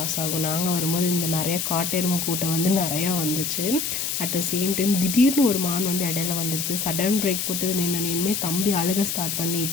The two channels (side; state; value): left; noise; hiss, 1 dB below the sound